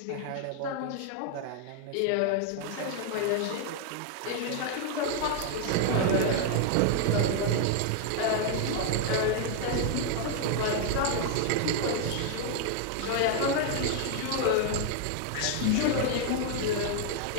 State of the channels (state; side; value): different; both; correlation 0.00